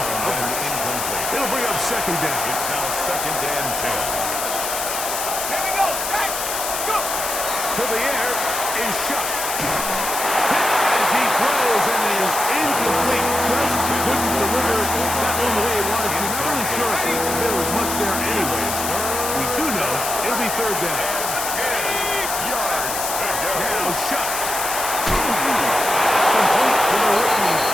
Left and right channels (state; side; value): noise; left; hiss, 3 dB below the sound